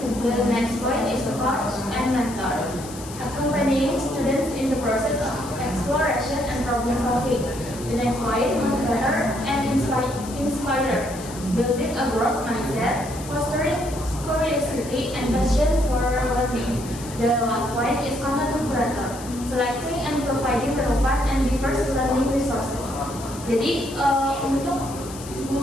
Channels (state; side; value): noise; left; hiss, 15 dB below the sound